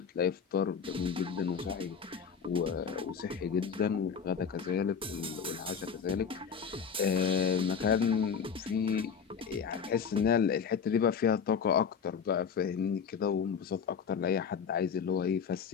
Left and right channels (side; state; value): right; quieter; 6.6 dB